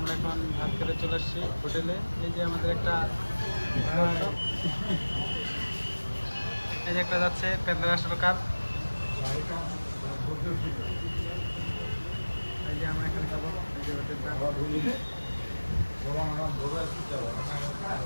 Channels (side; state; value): both; inverted; correlation -1.00